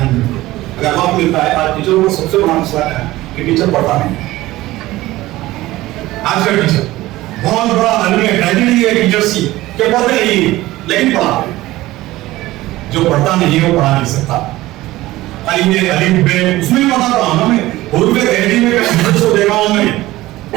اگر وقت ملتا ہے, آج ٹیچروں کو سب سے بڑا مسئلہ ہے کہ ٹیچر پڑھتا نہیں. آج کا ٹیچر بہت بڑا ٹریجڈی ہے ٹیچرس کی کہ پڑھتے نہیں لیکن پڑھاتے. جو پڑھتا نہیں وہ پڑھا نہیں سکتا. الف ب اس میں پڑھا رہا ہوں میں, حروف قہری میں کو دیکھا ہوں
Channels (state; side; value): quieter; left; 17.4 dB